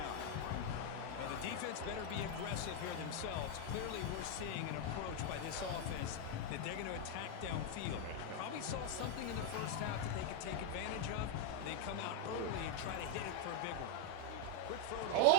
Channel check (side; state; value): both; different; correlation 0.01